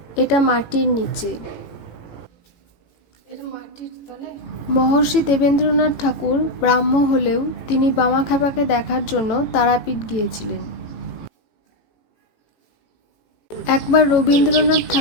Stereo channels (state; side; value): late; right; 18 ms